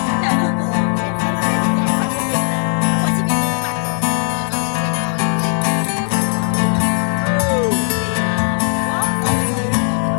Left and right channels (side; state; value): right; silent; 59 dB below the other